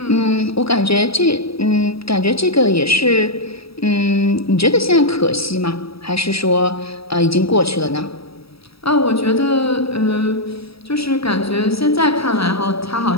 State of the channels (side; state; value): right; late; 0.77 ms